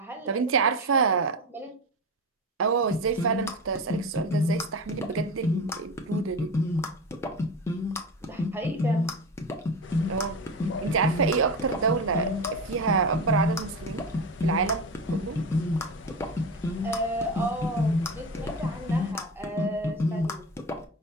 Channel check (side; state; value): both; normal; correlation 0.24